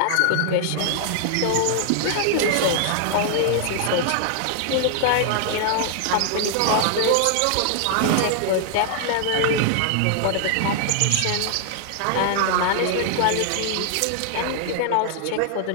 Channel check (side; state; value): both; different; correlation -0.01